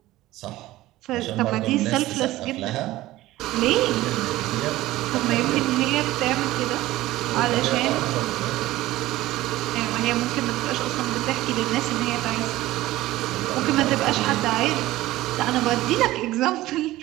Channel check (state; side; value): quieter; left; 16.8 dB